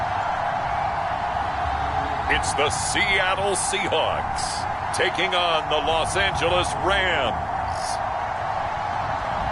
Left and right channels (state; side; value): identical; both; correlation 1.00